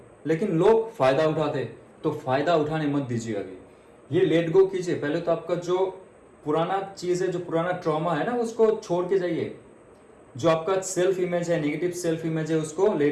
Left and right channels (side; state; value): both; identical; correlation 1.00